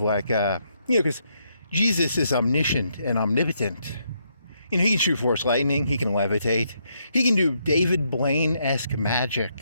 because Jesus is omniscient and omnipotent. He can shoot force lightning. He can levitate. He can do David Blaine-esque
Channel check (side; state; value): both; inverted; correlation -0.76